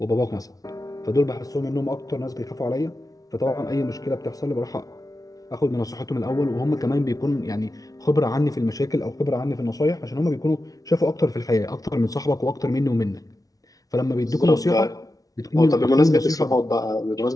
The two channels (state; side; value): late; right; 0.18 ms